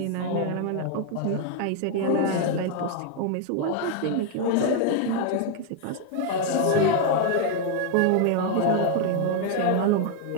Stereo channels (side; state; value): both; different; correlation 0.00